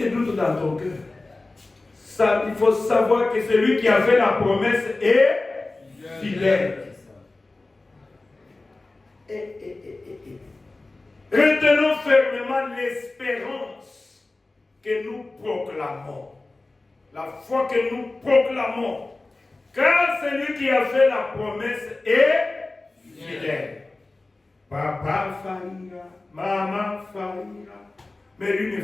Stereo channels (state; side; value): quieter; right; 3.2 dB